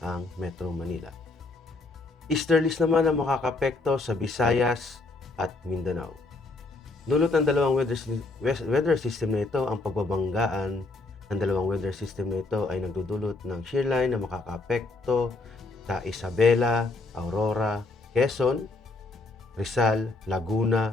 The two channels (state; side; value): quieter; right; 3.4 dB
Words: Metro Manila. Easterlies naman ang makakapekto sa Visayas at Mindanao. Dulot ng dalawang weather system na ito, ang pagbabanggaan ng dalawang weather system na ito ay nagdudulot ng shearline na makakaapekto sa Isabela, Aurora, Quezon, Rizal,